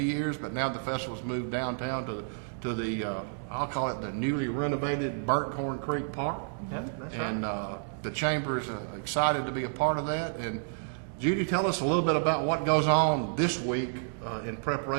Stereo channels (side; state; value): left; silent; digital silence